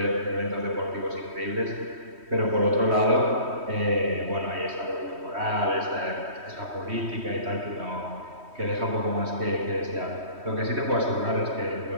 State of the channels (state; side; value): late; left; 3.1 ms